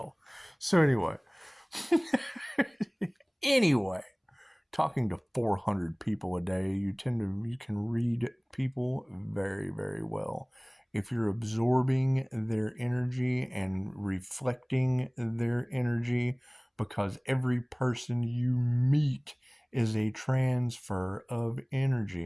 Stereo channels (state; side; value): identical; both; correlation 1.00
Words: So anyway, talking to 400 people a day, you can read people very, very well. If you're absorbing their energy and reflecting their energy, because every person you meet is a transfer of